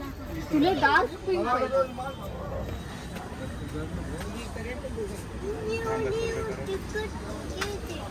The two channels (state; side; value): identical; both; correlation 1.00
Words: तुला डार्क पिंक पाहिजे.